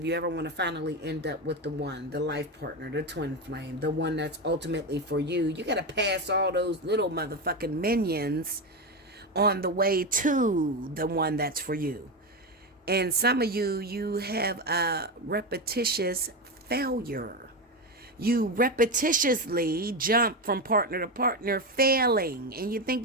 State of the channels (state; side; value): normal; both; correlation 0.14